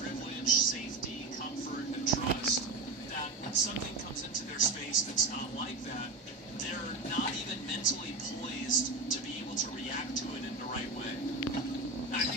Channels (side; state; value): left; quieter; 3.3 dB